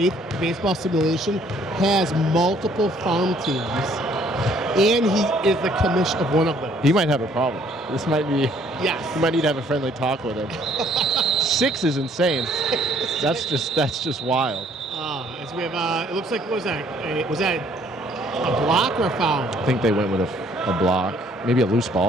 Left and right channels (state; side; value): normal; both; correlation 0.62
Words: baseball simulation has multiple farm teams. And he is the commish of one of them. He might have a problem. This might be. Yes. You might need to have a friendly talk with him. 6 is insane. That's just wild. As we have, it looks like, what was that? Was that a block or a foul? I think they went with a block, maybe a loose